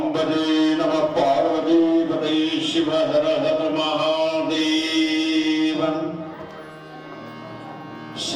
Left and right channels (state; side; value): identical; both; correlation 1.00